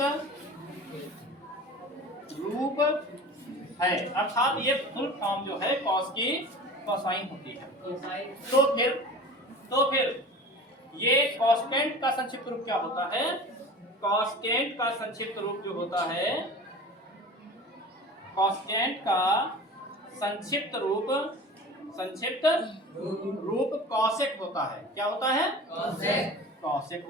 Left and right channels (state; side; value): normal; both; correlation 0.37